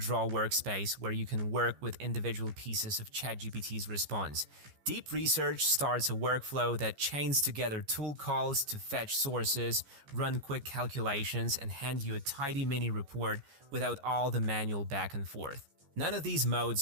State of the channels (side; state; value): left; late; 15 ms